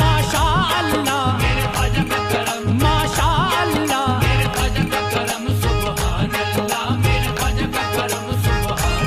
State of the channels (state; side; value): identical; both; correlation 1.00